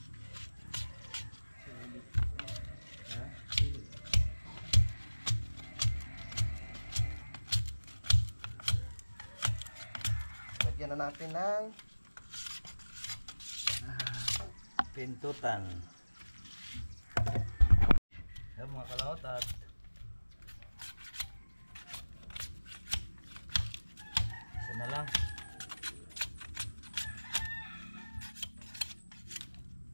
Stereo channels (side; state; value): both; inverted; correlation -1.00